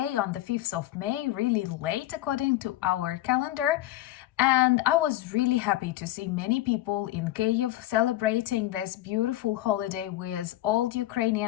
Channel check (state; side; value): quieter; right; 15.6 dB